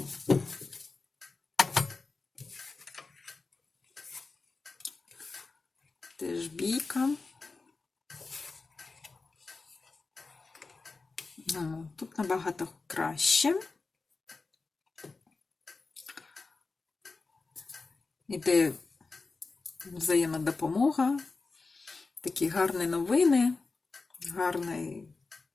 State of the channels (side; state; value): right; quieter; 4.0 dB